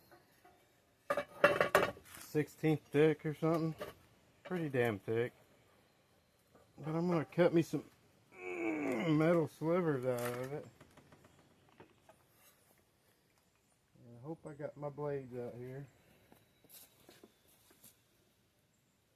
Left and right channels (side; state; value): both; identical; correlation 1.00